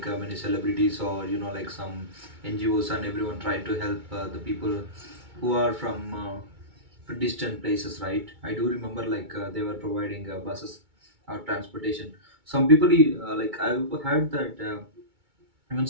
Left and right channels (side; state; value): left; late; 2.3 ms